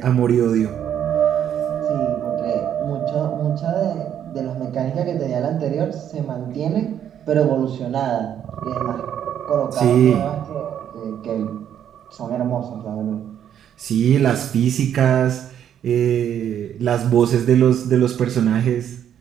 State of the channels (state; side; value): quieter; left; 9.6 dB